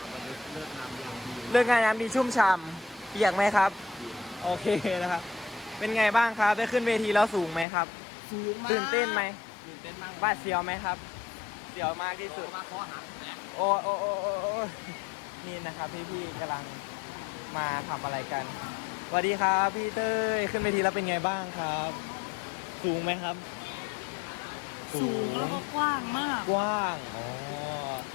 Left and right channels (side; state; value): right; drops out; at 7.7 s